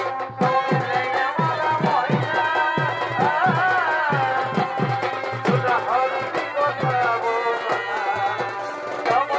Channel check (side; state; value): both; identical; correlation 1.00